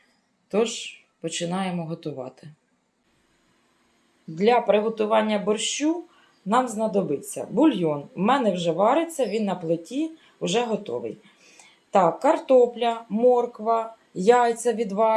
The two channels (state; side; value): identical; both; correlation 1.00